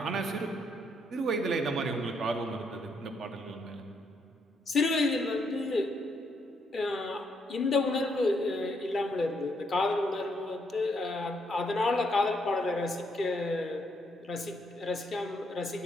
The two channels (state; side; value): normal; both; correlation 0.74